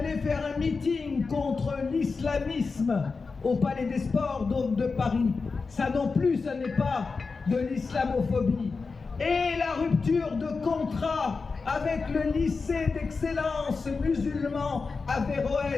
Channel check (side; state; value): right; quieter; 4.5 dB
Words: faire un meeting contre l'islamisme au Palais des Sports de Paris. Ça non plus, ce n'est pas de l'islamophobie. Et la rupture de contrat avec le lycée d'excellence musulman